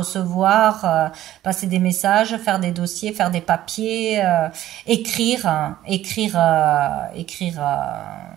passer des messages, faire des dossiers, faire des papiers, écrire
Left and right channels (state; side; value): quieter; left; 13.6 dB